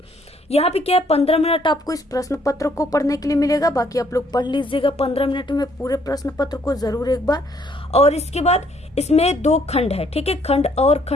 यहाँ पे क्या है, 15 मिनट आपको इस प्रश्न पत्र को पढ़ने के लिए मिलेगा, बाकी आप लोग पढ़ लीजिएगा 15 मिनट में पूरे प्रश्न पत्र को जरूर एक बार। और इसके बाद इसमें 2 खंड है, ठीक है, खंड अ और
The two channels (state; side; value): normal; both; correlation 0.66